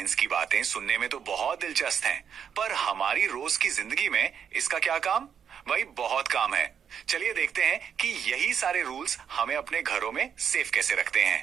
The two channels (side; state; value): left; quieter; 7.8 dB